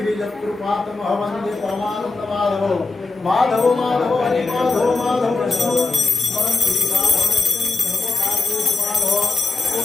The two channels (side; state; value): right; quieter; 3.7 dB